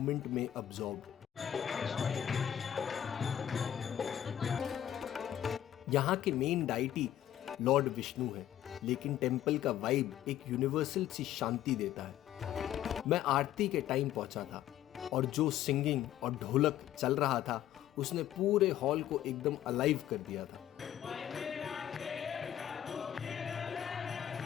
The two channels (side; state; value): right; quieter; 11.6 dB